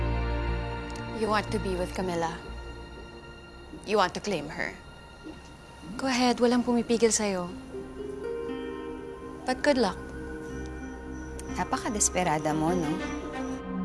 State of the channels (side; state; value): both; identical; correlation 1.00